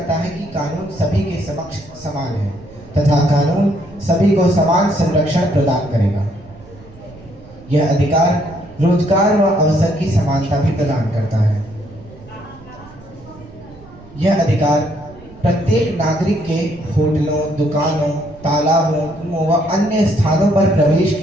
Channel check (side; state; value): right; noise; rumble, 21 dB below the sound